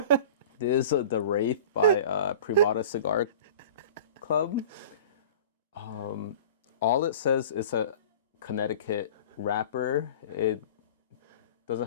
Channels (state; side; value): inverted; both; correlation -0.41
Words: This is the Wraith by Privada Cigar Club. All it says is a Connecticut wrapper. It doesn't